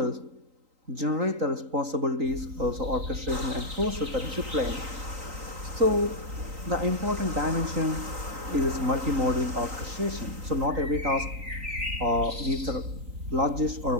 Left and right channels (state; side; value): late; left; 3.9 ms